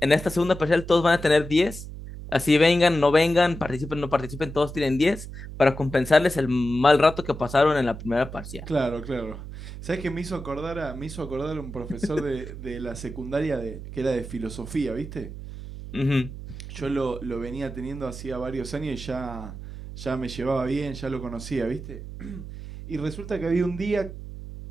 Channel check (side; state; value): right; noise; hum, 11 dB below the sound